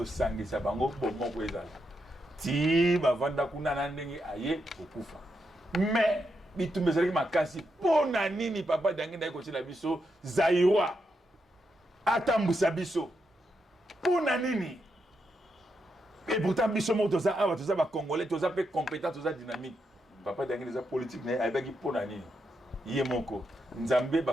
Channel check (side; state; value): both; normal; correlation 0.83